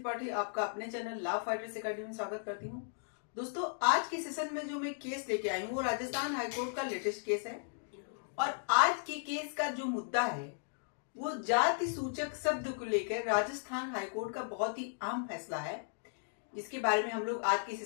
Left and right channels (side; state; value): right; silent; digital silence